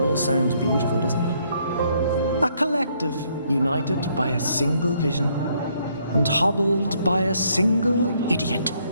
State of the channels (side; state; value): both; inverted; correlation -0.70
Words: sounds beautiful, doesn't it? A collective united by a single vision and hobbled by a single idiot.